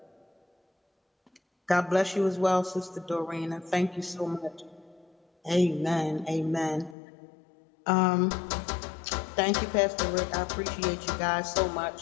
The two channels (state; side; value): drops out; right; at 7.0 s